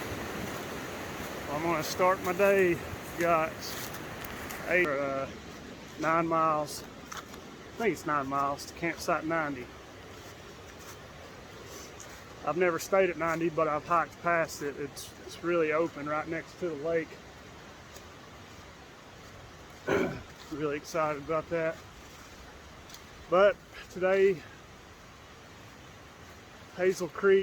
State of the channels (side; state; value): both; identical; correlation 1.00